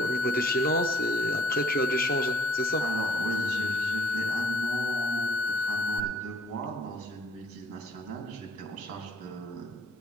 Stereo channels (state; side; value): normal; both; correlation 0.59